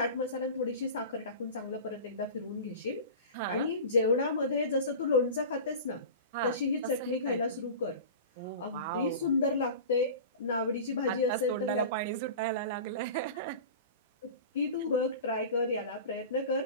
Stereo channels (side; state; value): both; inverted; correlation -0.34